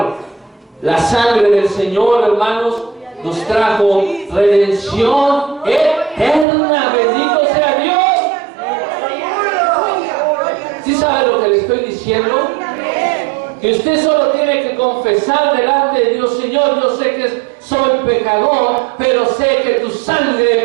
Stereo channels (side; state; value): left; drops out; at 6.5 s